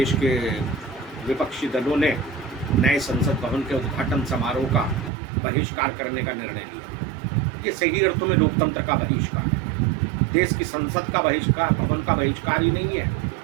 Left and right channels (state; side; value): drops out; left; at 5.1 s